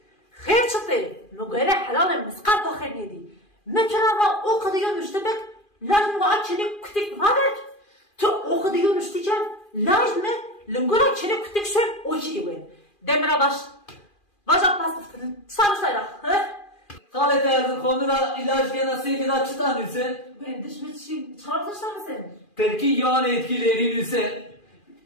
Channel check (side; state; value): right; late; 2.4 ms